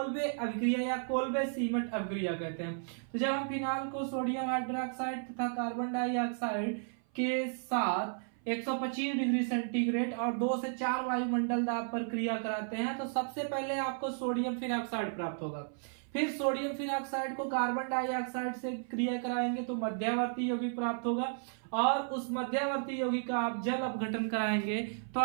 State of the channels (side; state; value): left; silent; 55 dB below the other